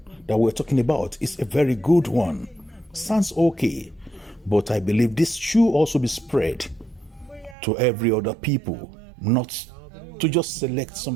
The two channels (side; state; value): left; drops out; at 7.6 s